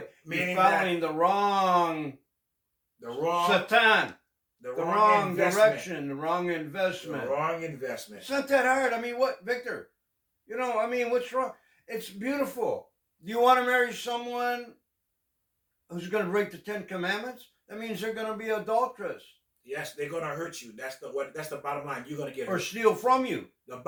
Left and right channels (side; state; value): both; identical; correlation 1.00